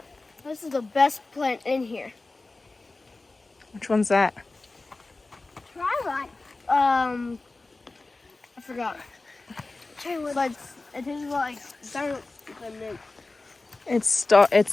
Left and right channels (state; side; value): quieter; right; 3.3 dB